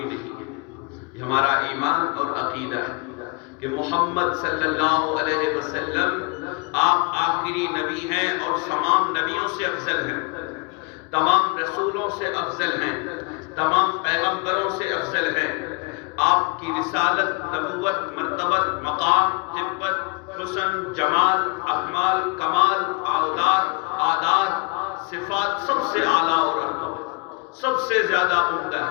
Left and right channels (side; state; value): right; quieter; 33.2 dB